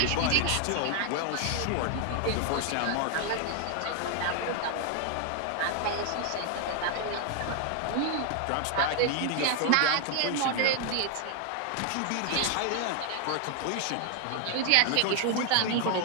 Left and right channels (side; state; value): both; different; correlation 0.00